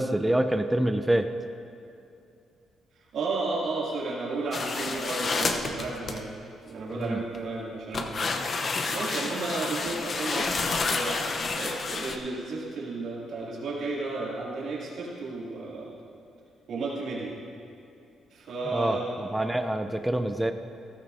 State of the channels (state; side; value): normal; both; correlation 0.84